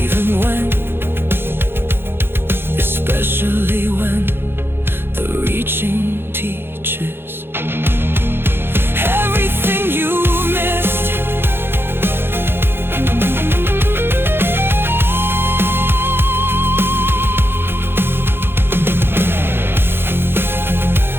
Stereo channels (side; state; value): left; late; 0.11 ms